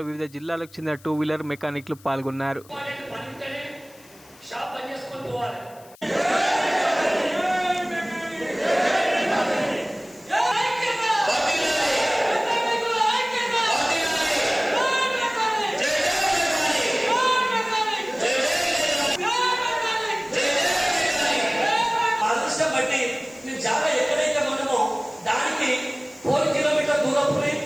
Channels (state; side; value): noise; left; hiss, 25 dB below the sound